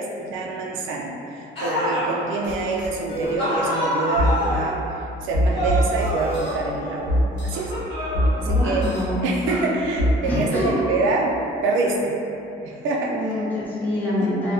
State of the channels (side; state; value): both; normal; correlation 0.46